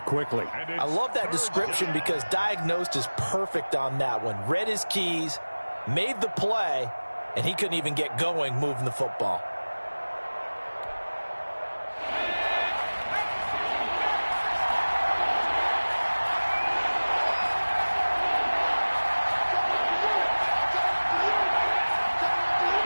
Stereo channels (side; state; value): both; inverted; correlation -1.00